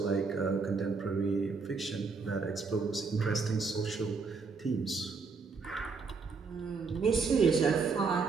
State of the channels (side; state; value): left; quieter; 4.7 dB